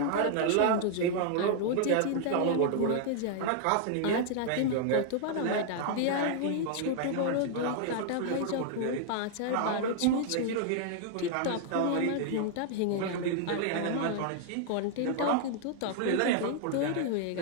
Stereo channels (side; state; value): both; different; correlation -0.01